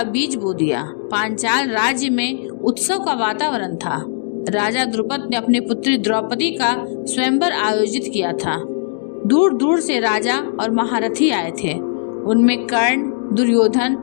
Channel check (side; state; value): right; silent; digital silence